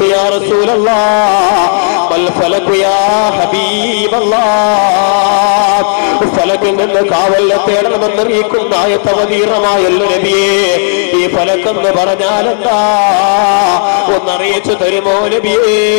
യാ റസൂലല്ലാഹ്, മൽ ഫലകു യാ ഹബീബല്ലാഹ്, ഫലകിൽ നിന്ന് കാവൽ തേടണമെന്ന് അറിയിക്കുന്ന ആയത്തവതീറമായല്ലോ നബിയേ. ഈ ഫലക്കെന്ന് പറഞ്ഞാൽ എന്താ? ഒന്നറിയിച്ചു തരുമോ നബിയേ?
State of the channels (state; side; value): silent; right; digital silence